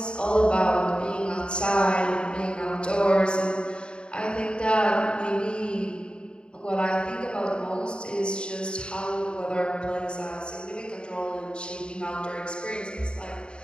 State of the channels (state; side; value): late; right; 0.052 ms